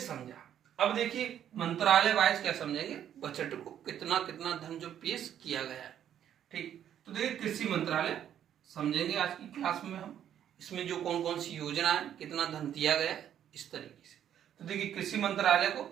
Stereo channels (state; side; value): quieter; left; 10.1 dB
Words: अब देखिए मंत्रालय वाइज क्या समझेंगे बजट को, कितना कितना धन जो पेश किया गया है। ठीक, तो देखिए कृषि मंत्रालय समझेंगे आज की क्लास में हम। इसमें जो कौन कौन सी योजना है, कितना धन दिया गया है, इस तरीके से। तो देखिए कृषि मंत्रालय को